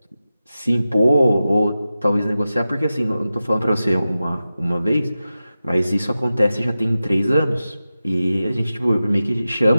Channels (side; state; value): both; inverted; correlation -0.93